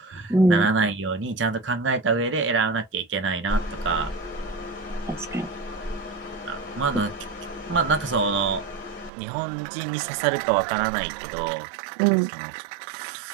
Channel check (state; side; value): drops out; left; at 9.1 s